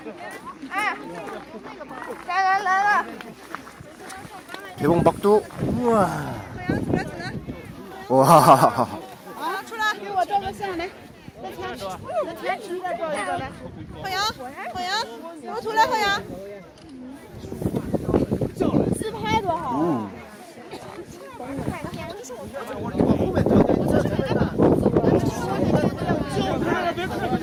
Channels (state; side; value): identical; both; correlation 1.00